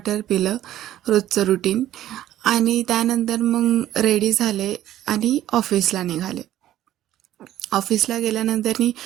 पिलं, रोजचं रुटीन. आणि त्यानंतर मग रेडी झाले आणि ऑफिसला निघाले. ऑफिसला गेल्यानंतर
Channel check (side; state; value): left; quieter; 13.1 dB